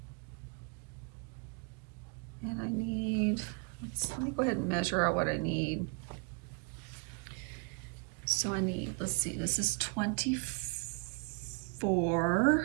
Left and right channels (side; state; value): left; quieter; 34.4 dB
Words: And I need, let me go ahead and measure out what I need. So I need, let's see, this is 24